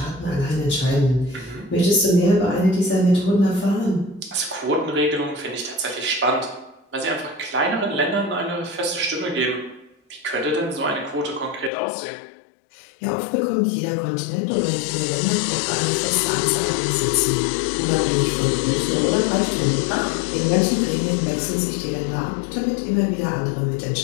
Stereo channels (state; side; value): drops out; right; at 11.7 s